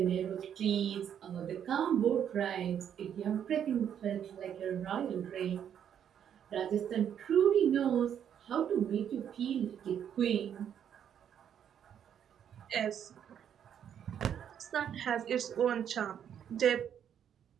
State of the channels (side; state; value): left; quieter; 9.0 dB